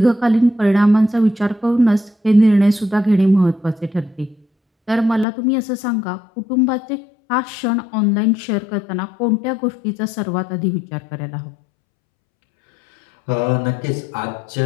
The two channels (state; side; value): drops out; right; at 5.2 s